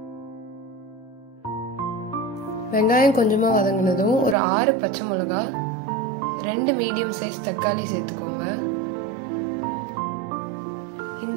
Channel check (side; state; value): left; drops out; at 4.4 s